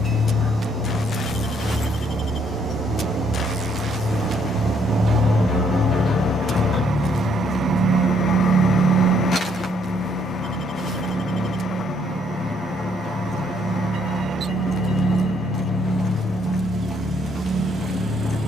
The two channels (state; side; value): normal; both; correlation 0.69